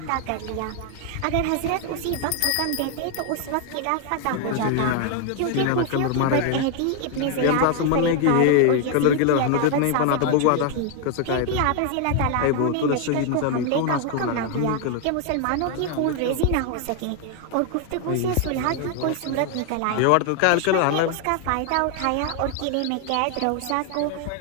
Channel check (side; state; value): both; different; correlation 0.00